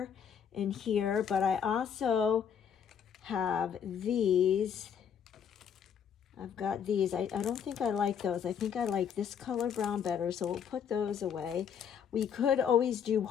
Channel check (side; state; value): right; quieter; 7.8 dB